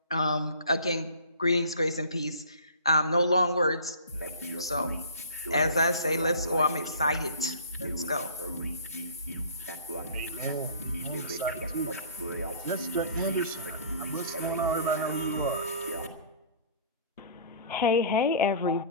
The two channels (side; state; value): both; inverted; correlation -0.46